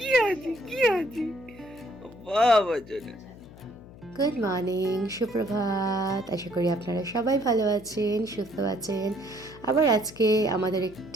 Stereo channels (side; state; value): left; noise; hum, 19 dB below the sound